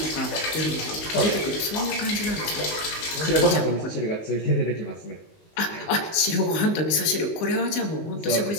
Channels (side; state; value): right; late; 19 ms